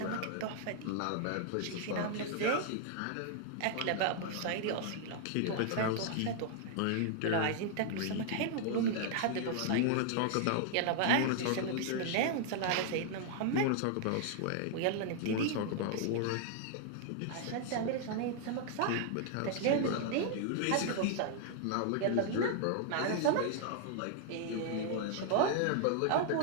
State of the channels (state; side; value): different; both; correlation 0.00